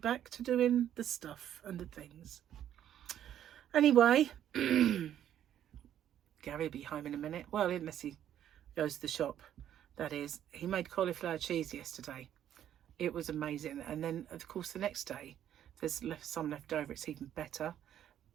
to doing the stuff and the things. Anyway, Gary will be home in a minute. Well, unless he goes to the shop. That is, he made cauliflower cheese yesterday. It was amazing. And then, of course, the next day, there's some left over. It's even better.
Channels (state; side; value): quieter; left; 10.7 dB